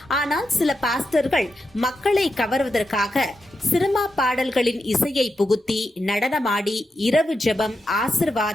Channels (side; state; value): both; normal; correlation 0.86